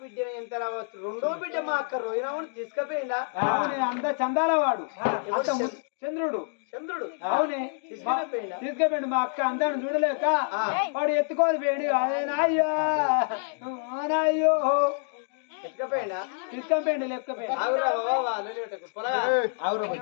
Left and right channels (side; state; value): right; silent; 60 dB below the other